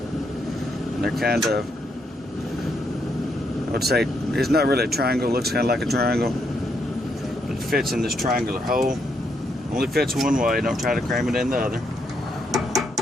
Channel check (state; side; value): normal; both; correlation 0.77